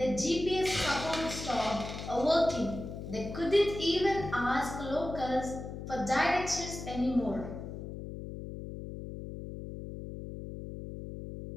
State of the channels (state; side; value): noise; left; hum, 9 dB below the sound